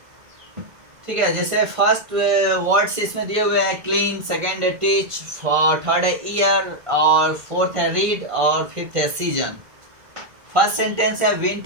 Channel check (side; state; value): left; late; 1.5 ms